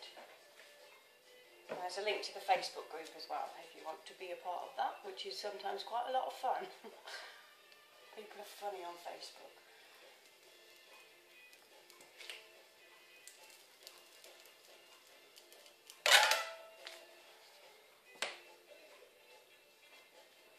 And there's a link to the Facebook group as well if you want to be a part of that, which is sometimes quite a lot of fun. People are funny on Facebook.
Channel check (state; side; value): identical; both; correlation 1.00